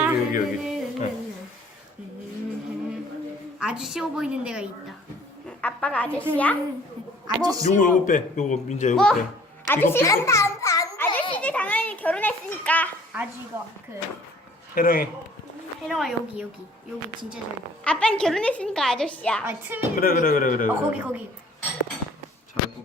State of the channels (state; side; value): normal; both; correlation 0.54